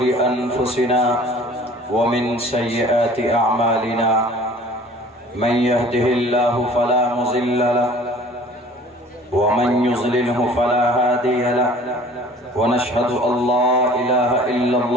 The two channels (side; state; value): both; normal; correlation 0.49